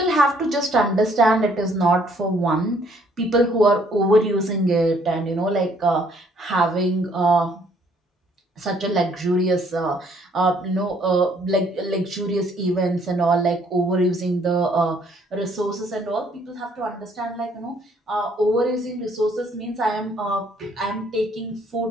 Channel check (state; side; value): normal; both; correlation 0.64